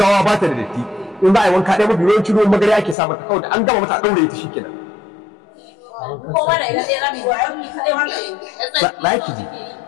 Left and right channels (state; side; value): drops out; right; at 3.0 s